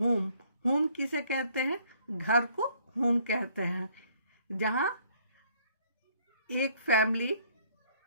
होम किसे कहते हैं? घर को होम कहते हैं. जहाँ एक फैमिली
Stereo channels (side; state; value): both; inverted; correlation -0.63